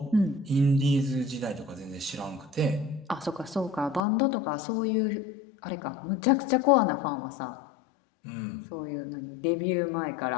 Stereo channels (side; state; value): right; drops out; at 4.0 s